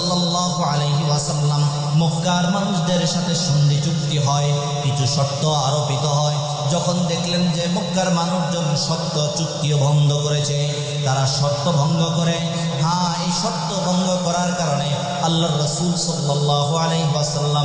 আলাইহি ওয়াসাল্লাম মক্কার মানুষদের সাথে সন্ধি চুক্তি হয়, কিছু শর্ত আরোপিত হয়। যখন দেখলেন যে মক্কার মানুষজন শর্ত চুক্তিও ভঙ্গ করেছে, তারা শর্ত ভঙ্গ করে, হ্যাঁ এই শর্ত ভঙ্গ করার কারণে আল্লাহর রাসূল সাল্লাল্লাহু আলাইহি ওয়াসাল্লাম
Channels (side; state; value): both; identical; correlation 1.00